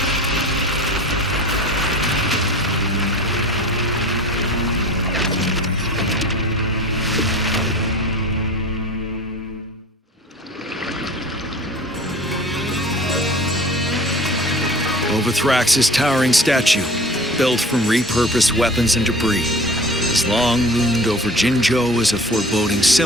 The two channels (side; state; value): both; normal; correlation 0.41